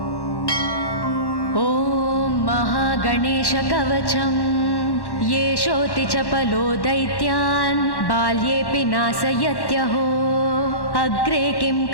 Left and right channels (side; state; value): right; late; 1.1 ms